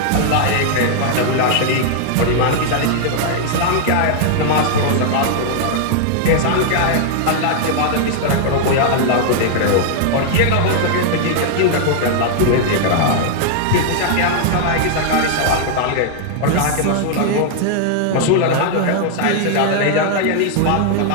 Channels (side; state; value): both; different; correlation -0.01